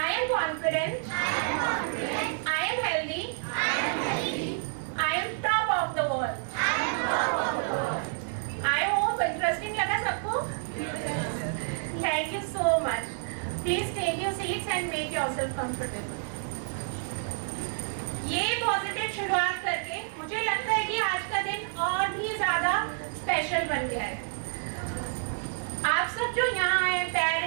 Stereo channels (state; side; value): silent; left; 58 dB below the other